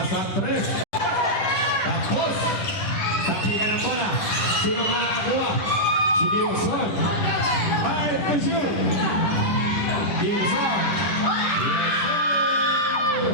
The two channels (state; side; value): late; right; 10 ms